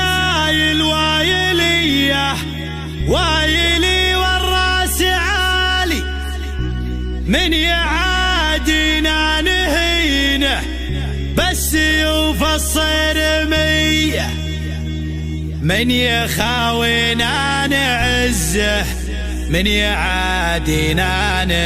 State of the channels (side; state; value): both; identical; correlation 1.00